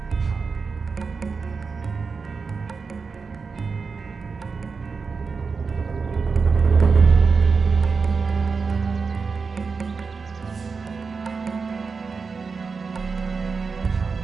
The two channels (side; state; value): left; quieter; 4.9 dB